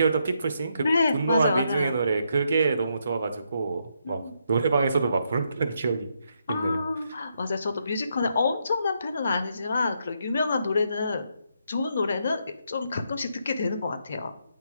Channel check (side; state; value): both; inverted; correlation -0.78